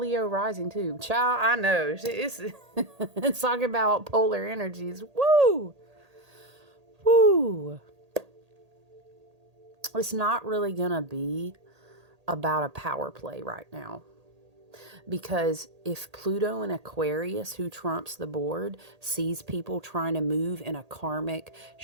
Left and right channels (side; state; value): left; late; 1.8 ms